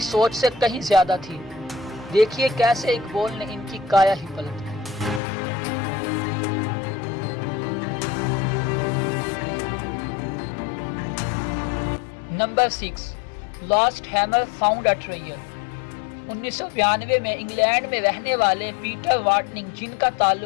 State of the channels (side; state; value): right; drops out; at 5.2 s